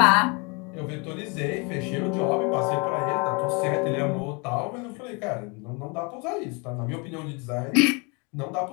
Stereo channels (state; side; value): quieter; right; 31.1 dB